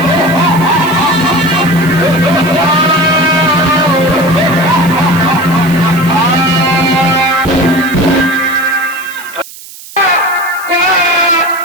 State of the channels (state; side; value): noise; right; hiss, 17 dB below the sound